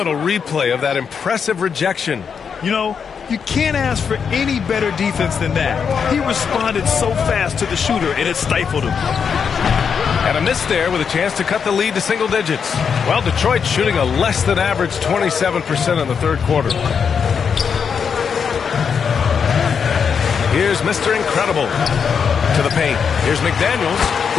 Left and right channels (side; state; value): right; quieter; 6.6 dB